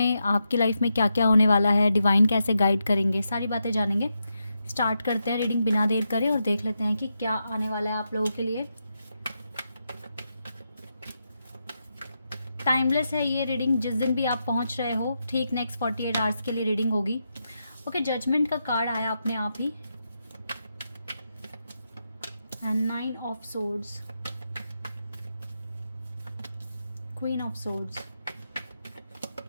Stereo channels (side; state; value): both; inverted; correlation -0.85